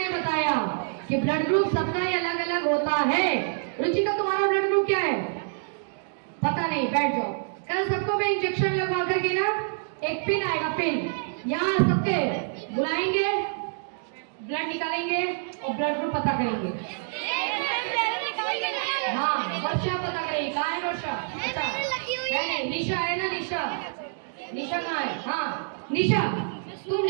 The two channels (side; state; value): left; silent; digital silence